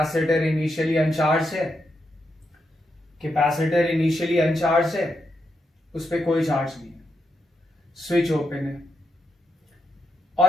इनिशियली अनचार्ज है कैपेसिटर इनिशियली अनचार्ज है, उस पर कोई चार्ज नहीं है, स्विच ओपन है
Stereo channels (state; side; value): normal; both; correlation 0.84